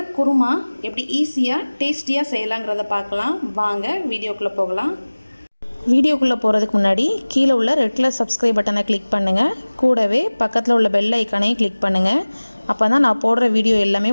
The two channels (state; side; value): inverted; both; correlation -1.00